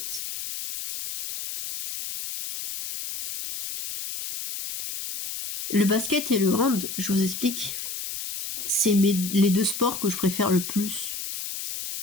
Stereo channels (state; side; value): noise; left; hiss, 7 dB below the sound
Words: Le basket et le hand, je vous explique, c'est les deux sports que je préfère le plus.